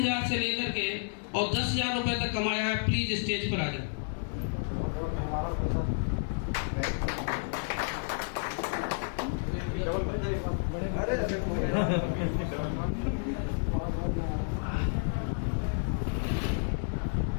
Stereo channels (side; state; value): right; silent; 57 dB below the other